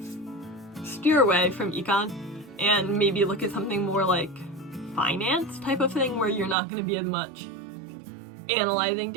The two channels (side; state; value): left; drops out; at 6.6 s